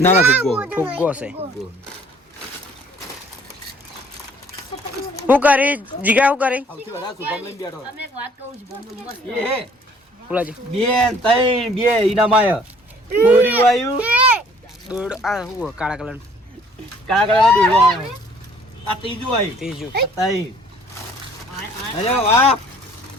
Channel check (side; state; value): both; normal; correlation 0.57